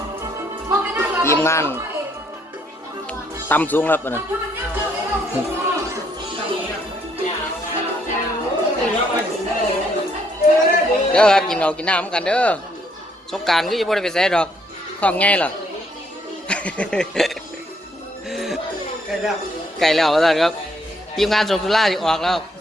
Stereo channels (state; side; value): normal; both; correlation 0.70